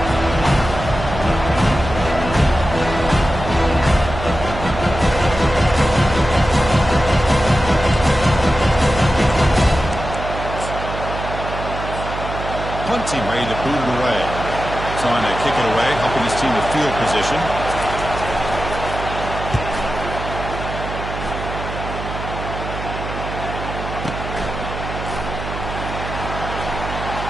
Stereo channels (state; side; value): noise; right; hum, 7 dB below the sound